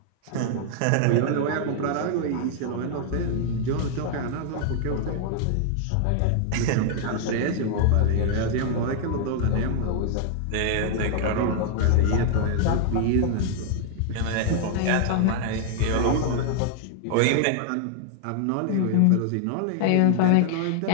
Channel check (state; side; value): different; both; correlation 0.00